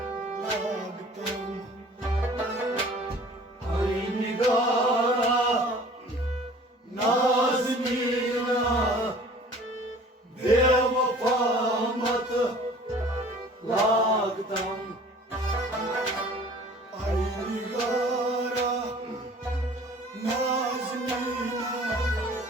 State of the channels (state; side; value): normal; both; correlation 0.48